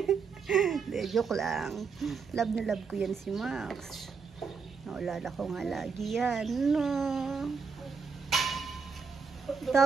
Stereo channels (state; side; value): quieter; left; 5.4 dB